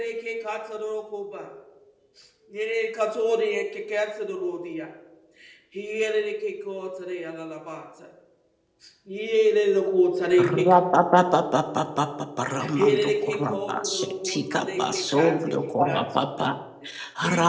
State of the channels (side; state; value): both; identical; correlation 1.00